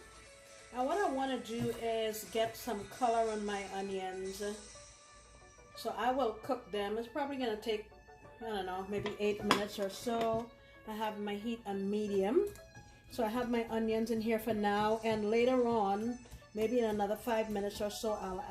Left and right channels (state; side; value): identical; both; correlation 1.00